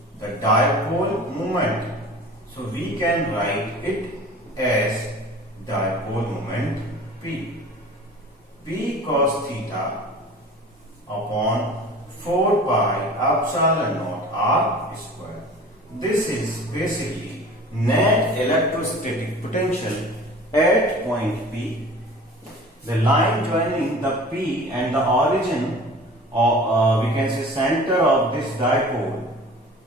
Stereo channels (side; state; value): both; normal; correlation 0.41